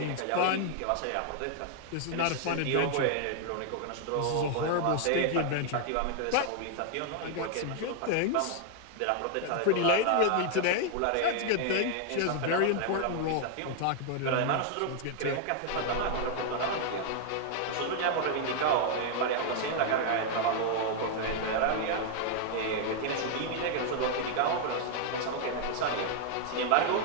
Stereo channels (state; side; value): different; both; correlation 0.00